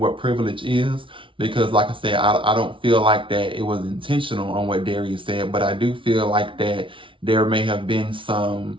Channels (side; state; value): left; late; 0.25 ms